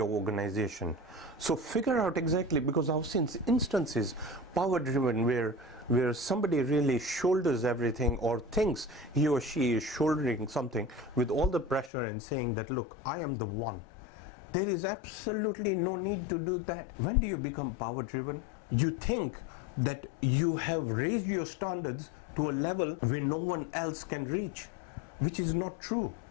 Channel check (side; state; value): right; drops out; at 11.9 s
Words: organization. So figure out exactly, because I've seen instances, power driven, where somebody really shoulders everything or thinks he or she is shouldering something with all the pressure and saying that, look, I am the one. There is absolutely no need to do that. When do you become power driven? You think that you have raised your standards to a level where no one else can reach, which is not true.